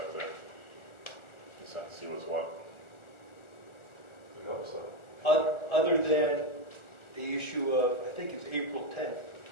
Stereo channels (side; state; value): right; late; 1.4 ms